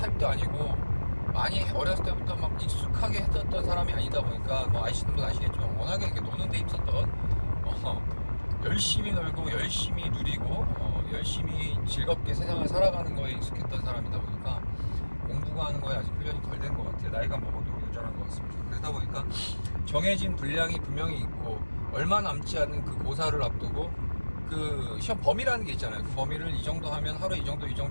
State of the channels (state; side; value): inverted; both; correlation -1.00